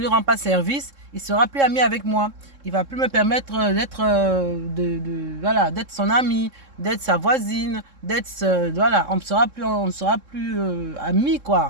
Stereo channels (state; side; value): late; left; 3.7 ms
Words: rends pas service, il sera plus ami avec moi. Il va plus me permettre d'être voilà, d'être son ami, d'être sa voisine, voilà, on ne sera plus amis,